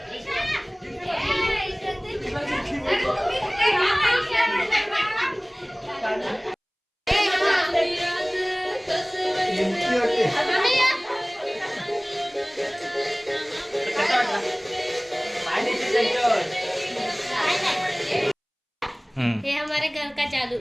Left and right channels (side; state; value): both; identical; correlation 1.00